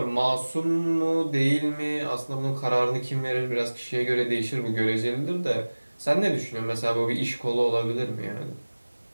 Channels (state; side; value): inverted; both; correlation -1.00